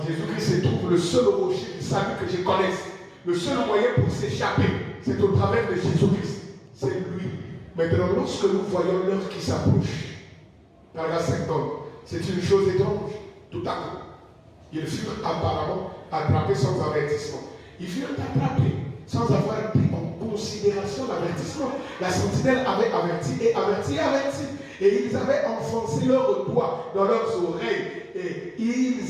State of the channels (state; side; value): identical; both; correlation 1.00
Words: se trouve le seul rocher du salut que je connaisse. Le seul moyen pour s'échapper, c'est au travers de Jésus-Christ. C'est lui. Maintenant, lorsque nous voyons l'heure qui s'approche, paragraphe 50, c'est une chose étrange. Tout à coup, ils furent apparemment attrapés sans avertissement. Ils furent attrapés sans avoir pris en considération l'avertissement. La sentinelle avait averti et averti et averti. Et ils avaient enfoncé leurs doigts dans leurs oreilles. Et